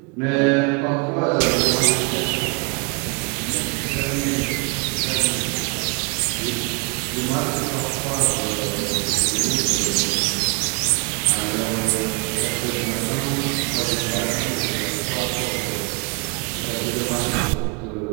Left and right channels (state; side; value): quieter; left; 33.1 dB